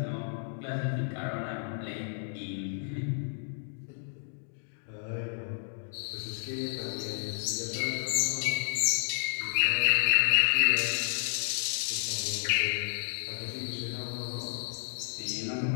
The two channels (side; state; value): right; silent; 57 dB below the other